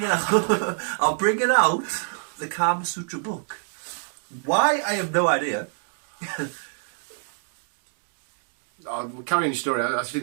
bringing out the Kama Sutra book. Why? I have no idea. We're carrying your story. I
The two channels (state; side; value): silent; left; 59 dB below the other